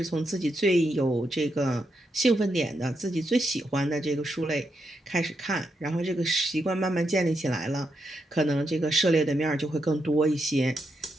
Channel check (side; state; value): both; normal; correlation 0.82